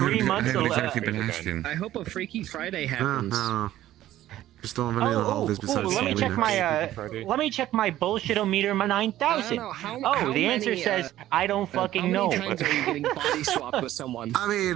months. I haven't exactly been asking. I hope a Freaky Friday happens. Just don't have any of the holidays besides let me check Halloween. my let me check my bullshit-o-meter 9000. How The answer many, says I don't fucking know. How many times are you getting body swapped with someone? I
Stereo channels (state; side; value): quieter; left; 13.8 dB